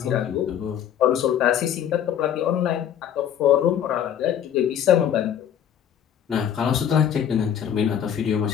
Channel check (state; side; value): quieter; right; 9.5 dB